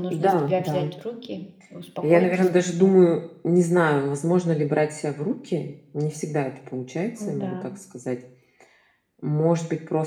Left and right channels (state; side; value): identical; both; correlation 1.00